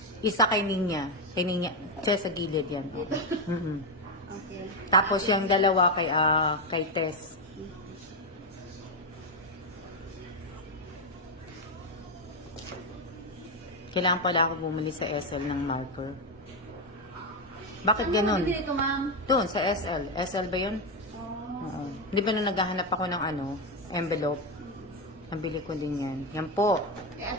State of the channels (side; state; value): both; normal; correlation 0.08